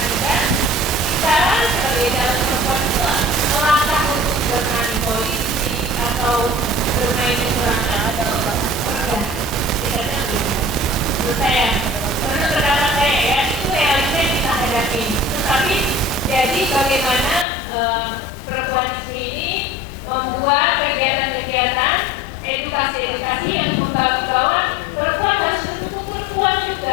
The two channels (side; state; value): right; drops out; at 17.4 s